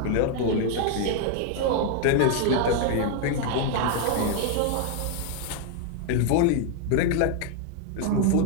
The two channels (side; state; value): both; different; correlation 0.00